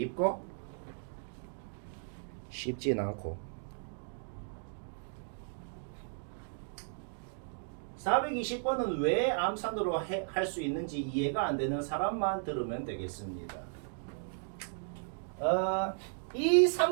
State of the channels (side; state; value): left; silent; digital silence